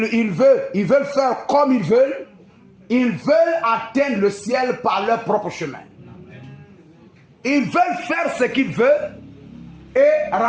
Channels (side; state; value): both; identical; correlation 1.00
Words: veulent faire comme ils veulent. Ils veulent atteindre le ciel par leur propre chemin. Ils veulent faire ce qu'ils veulent et